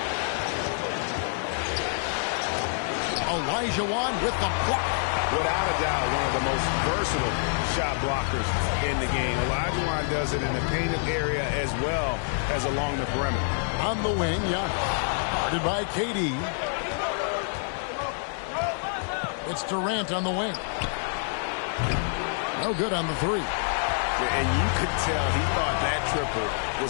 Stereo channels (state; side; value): silent; right; 60 dB below the other